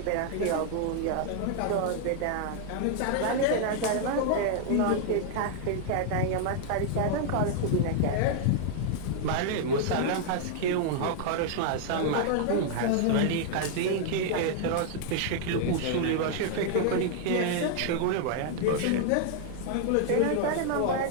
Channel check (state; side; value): different; both; correlation -0.01